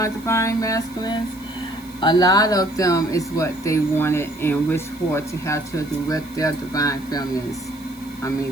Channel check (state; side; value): noise; right; hiss, 23 dB below the sound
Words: divine masculines. A lot of them is what they wanted and wished for, to have children with their divine feminists. I